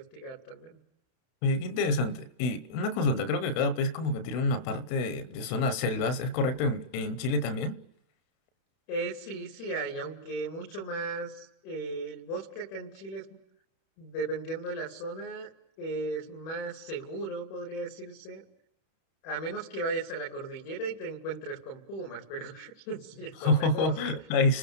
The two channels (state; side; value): late; right; 31 ms